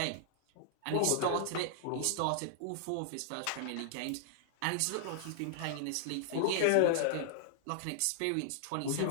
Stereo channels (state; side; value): different; both; correlation -0.01